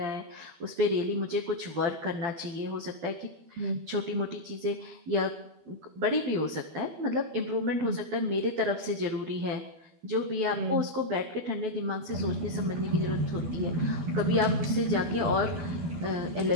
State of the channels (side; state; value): left; late; 12 ms